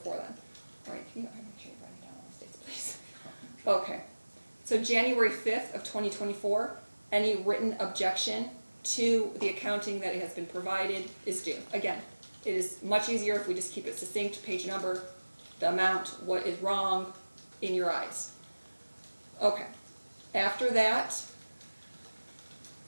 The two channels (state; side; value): inverted; both; correlation -1.00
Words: then. All right, can you, make sure you write it down on the dates, please. Okay. So January 5th of 2024, any written objection to the accounting that has been provided is due. Again, it is much easier if we just keep it succinct, page number, the amount, what is wrong in your eyes. Okay. After that,